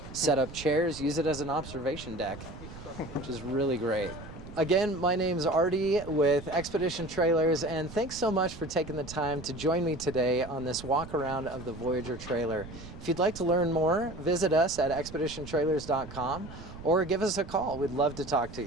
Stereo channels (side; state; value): right; noise; rumble, 14 dB below the sound